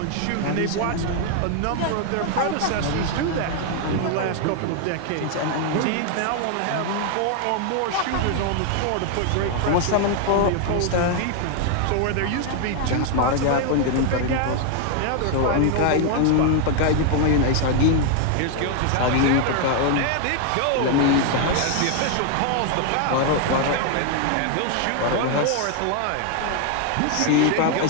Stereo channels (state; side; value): different; both; correlation 0.00